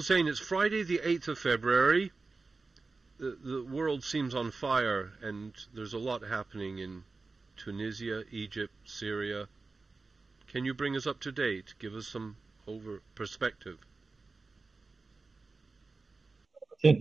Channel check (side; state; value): left; quieter; 3.9 dB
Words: it's Friday the 8th of February. The world seems on fire, and there's a lot happening in Tunisia, Egypt, Syria. Can you bring us up to date? Give us some perspective. Since